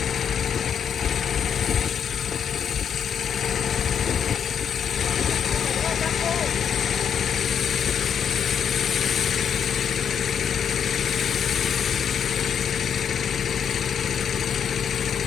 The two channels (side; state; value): right; quieter; 7.9 dB